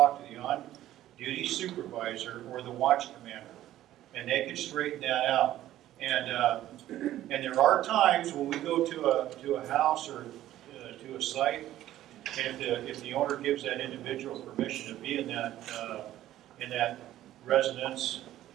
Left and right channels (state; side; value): quieter; left; 13.5 dB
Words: to the on-duty supervisor or the watch commander, and they can straighten that out. And there are times when we go to a house or to a site, and if the owner gives that individual permission to be in that residence